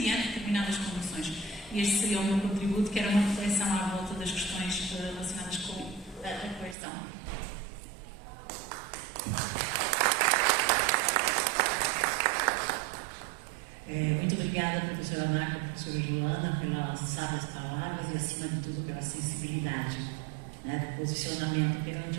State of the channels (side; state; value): left; drops out; at 6.8 s